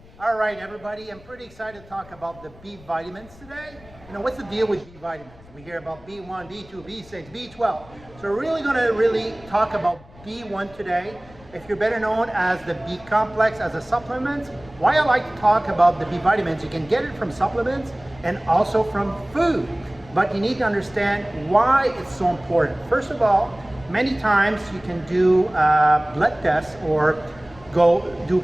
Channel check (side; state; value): left; noise; rumble, 23 dB below the sound